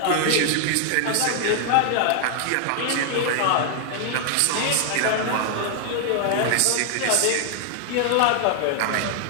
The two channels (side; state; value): both; different; correlation 0.00